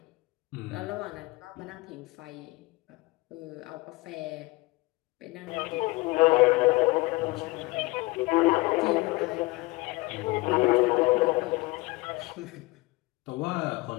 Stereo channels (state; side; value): quieter; right; 22.0 dB